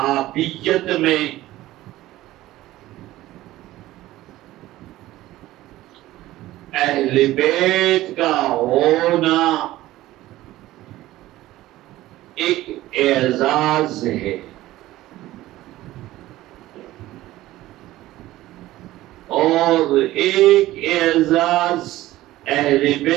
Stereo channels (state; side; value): quieter; left; 16.1 dB